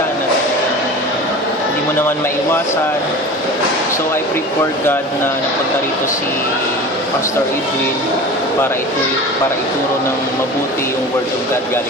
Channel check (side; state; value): both; normal; correlation 0.35